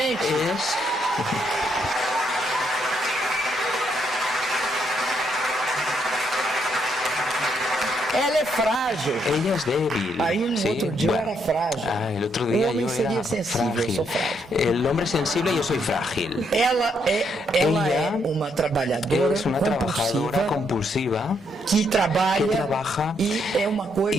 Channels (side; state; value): both; normal; correlation 0.75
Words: Ela é frágil. Ella es débil. Aí no outro dia eu era frágil. El otro día yo era sensível, eu sou frágil. El hombre es sensible y yo soy frágil. Ela é uma trabalhadora es una trabajadora compulsiva que trabaja e é uma